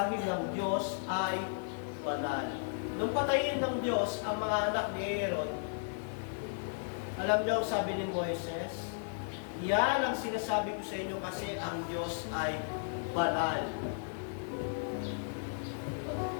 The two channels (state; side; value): silent; right; 55 dB below the other